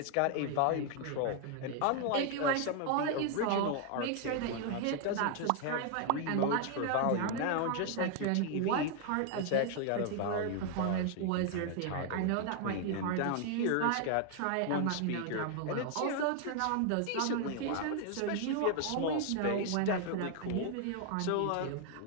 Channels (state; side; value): different; both; correlation 0.00